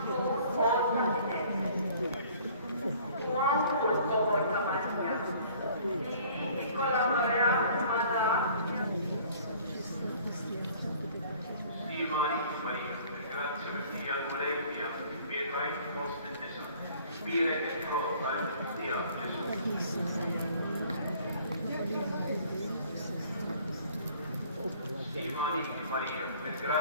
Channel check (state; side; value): inverted; both; correlation -0.53